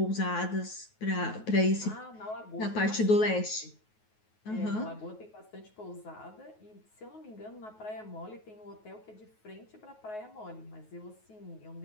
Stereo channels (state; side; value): late; right; 9.3 ms